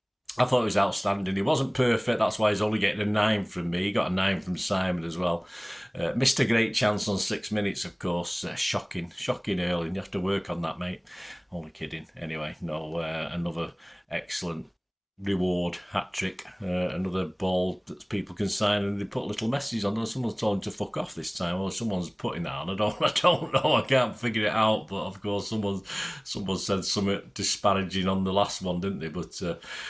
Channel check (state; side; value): identical; both; correlation 1.00